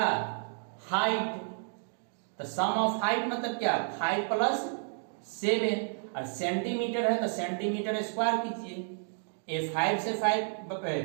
हाइट, तो सम ऑफ हाइट मतलब क्या, 5 प्लस 7, और सेंटीमीटर है तो सेंटीमीटर स्क्वायर कीजिए, ए 5 से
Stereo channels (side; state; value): left; silent; digital silence